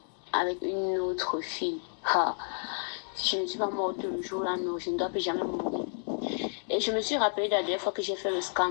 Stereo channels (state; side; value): silent; right; 57 dB below the other